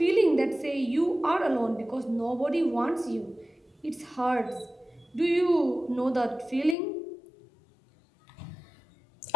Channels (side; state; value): right; drops out; at 6.8 s